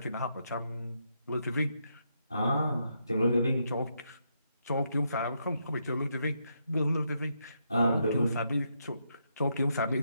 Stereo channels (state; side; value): inverted; both; correlation -0.79